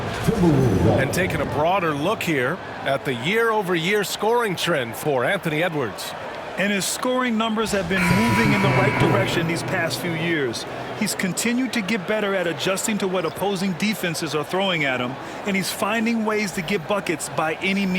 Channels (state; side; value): identical; both; correlation 1.00